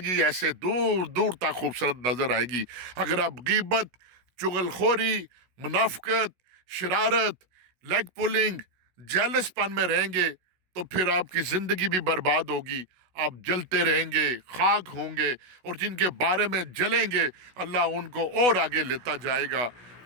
ایسے دور دور تک خوبصورت نظر آئے گی۔ اگر آپ غیبت، چغل خوری، منافقت، شرارت، لیگ پولنگ، جیلس پن میں رہیں گے تو پھر آپ کی زندگی بھی برباد ہوگی، آپ جلتے رہیں گے، خاک ہوں گے، اور جن کے بارے میں جلیں گے اللہ ان کو اور آگے لیتا جائے گا۔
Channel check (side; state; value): left; late; 16 ms